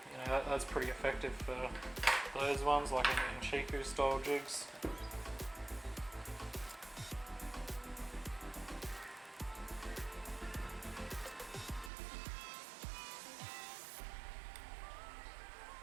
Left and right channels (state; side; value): drops out; left; at 11.9 s